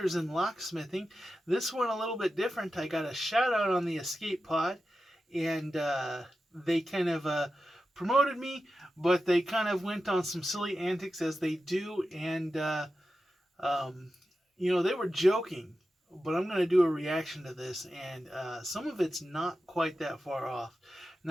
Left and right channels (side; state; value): both; normal; correlation 0.92